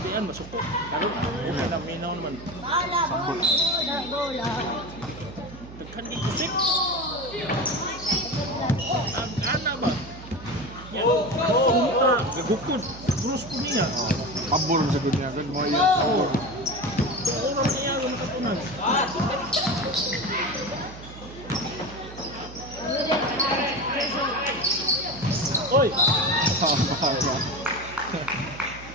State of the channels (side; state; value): right; noise; hum, 15 dB below the sound